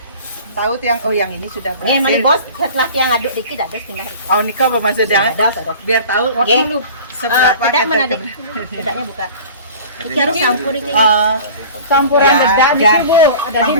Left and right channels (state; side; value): inverted; both; correlation -0.41